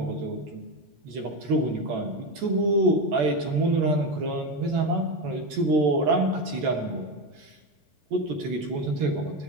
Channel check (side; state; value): left; late; 13 ms